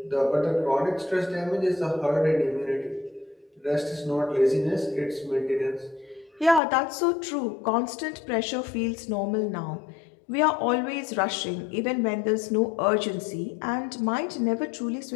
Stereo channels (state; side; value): drops out; right; at 6.6 s